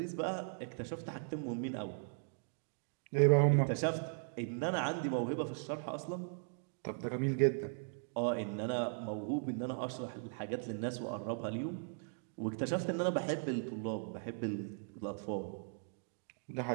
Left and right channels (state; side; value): silent; left; digital silence